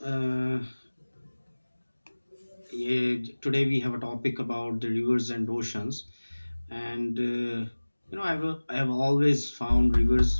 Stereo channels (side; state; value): both; inverted; correlation -1.00